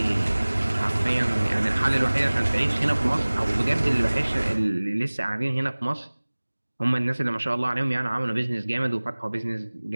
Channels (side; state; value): both; inverted; correlation -1.00